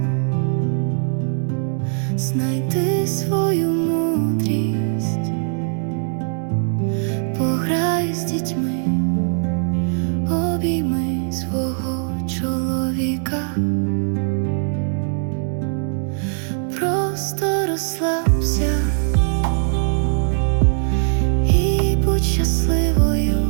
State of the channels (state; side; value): silent; left; 61 dB below the other